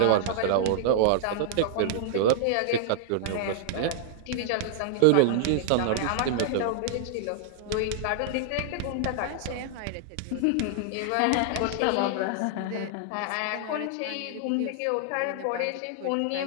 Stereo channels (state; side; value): different; both; correlation -0.01